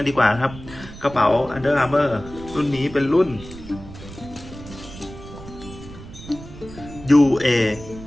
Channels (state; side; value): noise; right; rumble, 15 dB below the sound